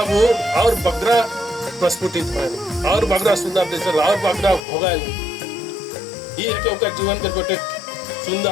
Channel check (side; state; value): right; drops out; at 4.6 s